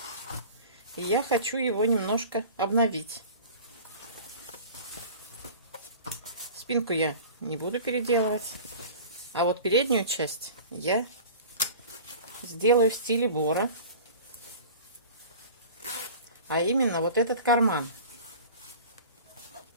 и я хочу его немножко обновить. Спинку я не буду переделывать, а вот переднюю часть я сделаю в стиле Бора. А именно вот этот карман.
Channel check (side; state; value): both; inverted; correlation -0.40